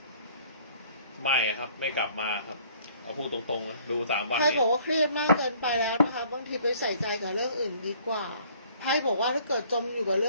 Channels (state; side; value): inverted; both; correlation -0.56